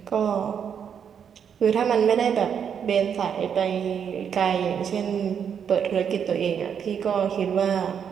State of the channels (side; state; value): left; quieter; 7.7 dB